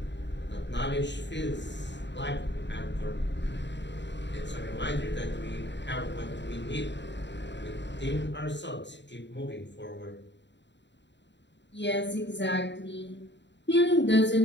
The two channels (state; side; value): late; right; 0.52 ms